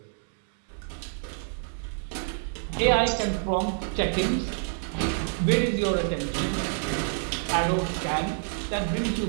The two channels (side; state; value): left; silent; digital silence